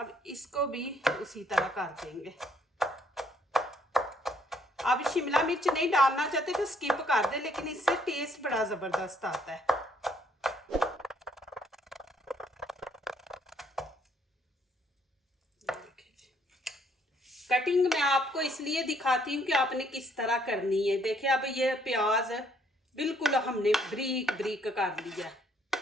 इसको भी उसी तरह कर देंगे। अब शिमला मिर्च नहीं डालना चाहते तो स्किप कर दे, लेकिन इससे टेस्ट बड़ा ज़बरदस्त आता है। कटिंग मैं आपको इसलिए दिखाती हूँ कि आपने किस तरह करनी है। देखिए अब ये प्याज बिल्कुल हमने बारीक बारीक कर लिया।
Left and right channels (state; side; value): normal; both; correlation 0.67